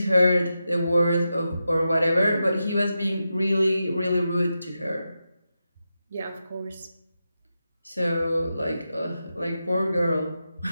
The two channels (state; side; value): inverted; both; correlation -0.89